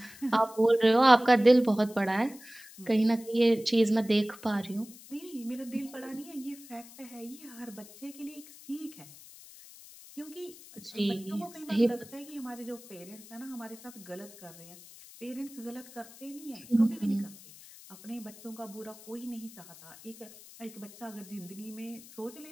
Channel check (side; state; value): left; noise; hiss, 19 dB below the sound